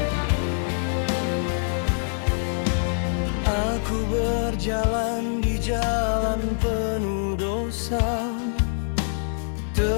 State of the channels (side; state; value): right; silent; 62 dB below the other